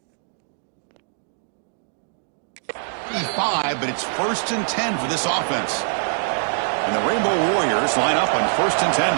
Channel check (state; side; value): silent; left; digital silence